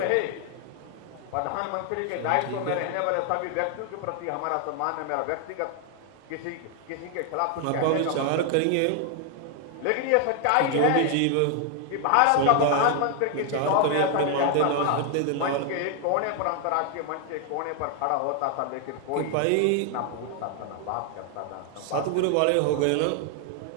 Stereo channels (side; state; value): both; different; correlation 0.00